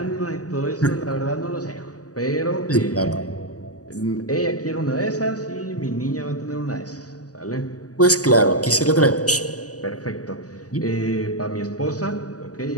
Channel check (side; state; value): right; late; 0.67 ms